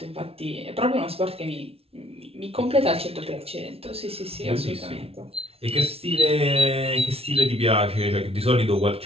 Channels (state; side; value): late; left; 0.29 ms